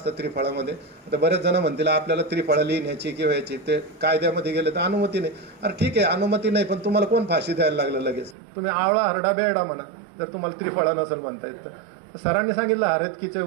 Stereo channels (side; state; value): left; drops out; at 8.3 s